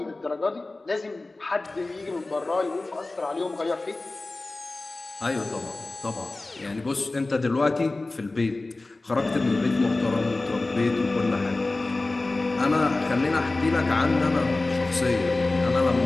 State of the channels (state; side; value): quieter; right; 3.1 dB